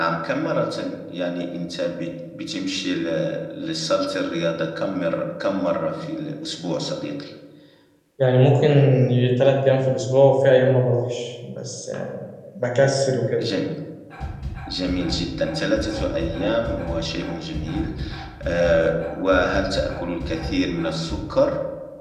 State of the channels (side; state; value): both; identical; correlation 1.00